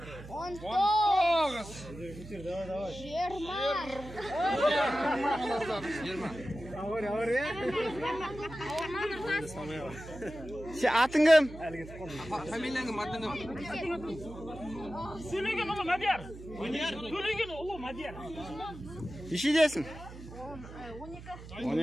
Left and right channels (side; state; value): right; noise; hum, 14 dB below the sound